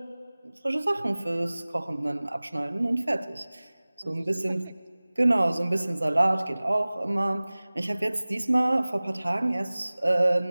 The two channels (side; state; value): both; inverted; correlation -0.99